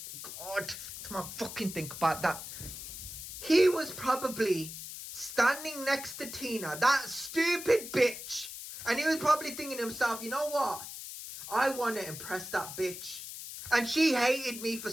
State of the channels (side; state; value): left; noise; hiss, 10 dB below the sound